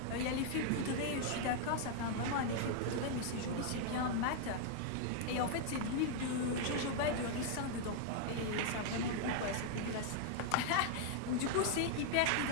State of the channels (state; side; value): different; both; correlation 0.00